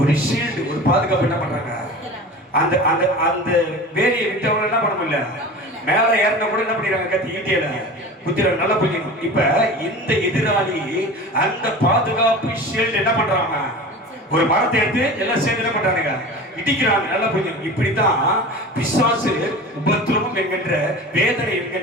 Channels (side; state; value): both; normal; correlation 0.35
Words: ஷீல்டு, ஒரு பாதுகாப்பு என்ன பண்றாங்க? அந்த அந்த அந்த வேலையை விட்டவங்க என்ன பண்ண முடியல, மேல ஏறின கூட என்ன பண்ணிடுறாங்க? கத்தி ஈட்டியில குத்திர நல்லா புரிஞ்சுக்கணும். இப்ப இந்த எதிராளி அந்த பாதுகாப்பு ஷீல்டு என்ன பண்றாங்க? ஒரு மரத்தை எடுத்து எல்லாம் சேர்ந்து என்ன பண்றாங்க? இடிக்கிறாங்க. நல்லா புரியும். இப்படித்தான் பிசாசு உபத்திரவம் என்கின்ற, வேதனை